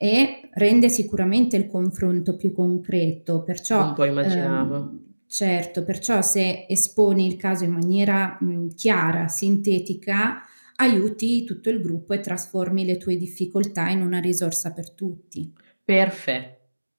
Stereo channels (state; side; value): inverted; both; correlation -1.00